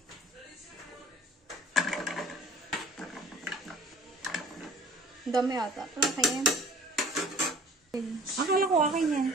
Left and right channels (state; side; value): normal; both; correlation 0.49